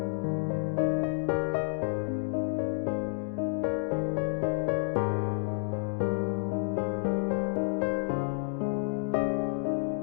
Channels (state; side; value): silent; right; 58 dB below the other